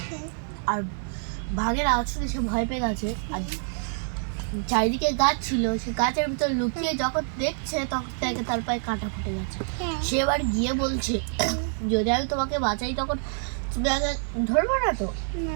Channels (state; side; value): silent; left; digital silence